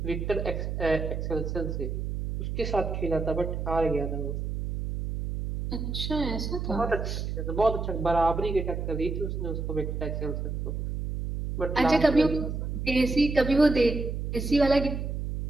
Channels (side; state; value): right; noise; hum, 3 dB below the sound